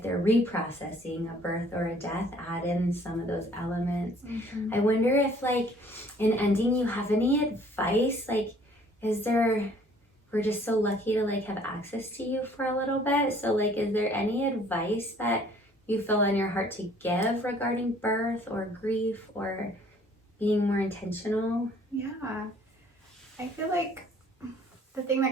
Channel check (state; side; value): normal; both; correlation 0.57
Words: they're reprocessing a birth or a death, add in some of those elements. I wonder if, like, in ending, you have any advice? Like, we're just so lucky to like have access to you for a little bit. So like, is there any advice that you feel on your heart to give regarding birth or grief or being more intentional? Yeah, I feel like the thing